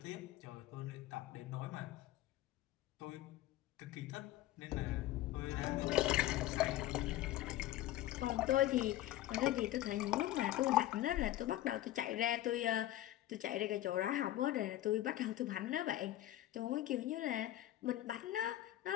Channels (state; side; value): quieter; right; 14.6 dB